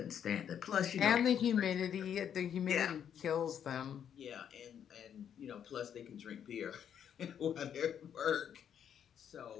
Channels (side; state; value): right; quieter; 8.8 dB